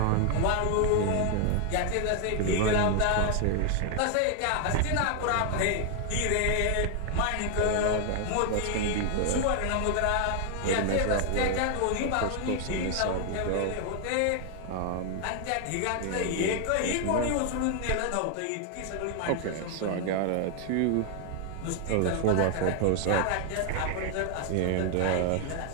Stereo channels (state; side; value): different; both; correlation 0.00